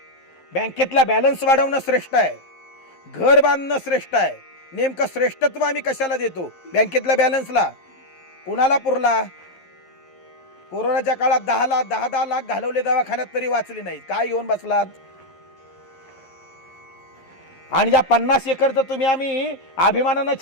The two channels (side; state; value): right; late; 11 ms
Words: बँकेतला बॅलन्स वाढवणं श्रेष्ठ आहे, घर बांधणं श्रेष्ठ आहे. नेमकं श्रेष्ठत्व आम्ही कशाला देतो? बँकेतल्या बॅलन्सला. कुणाला पुरला? कोरोनाच्या काळात 10 लाख घालवले दवाखान्यात तरी वाचले नाहीत. काय घेऊन बसलात? आणि ज्या 50 एकरचं तुम्ही आम्ही अभिमानानं